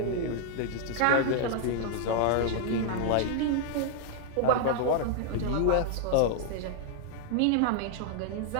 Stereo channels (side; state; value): both; different; correlation 0.00